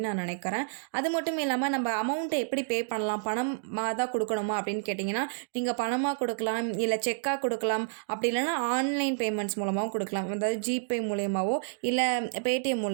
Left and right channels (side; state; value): left; silent; digital silence